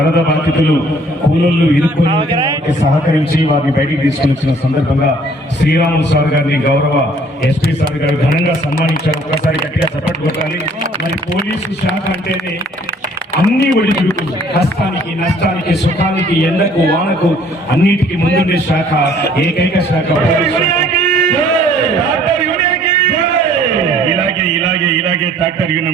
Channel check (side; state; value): both; normal; correlation 0.57